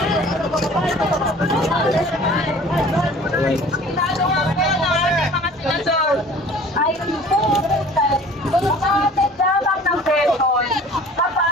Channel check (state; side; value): normal; both; correlation 0.47